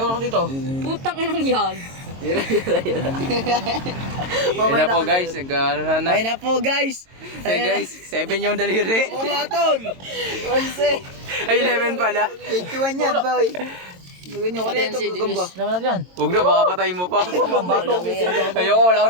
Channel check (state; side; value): late; left; 22 ms